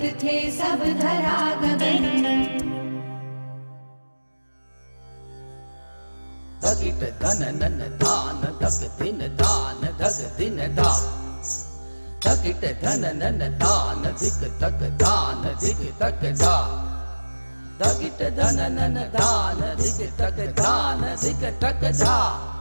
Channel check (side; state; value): both; inverted; correlation -1.00